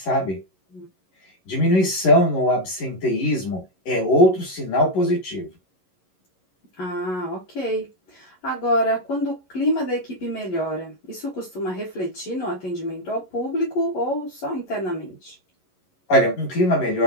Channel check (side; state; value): right; late; 11 ms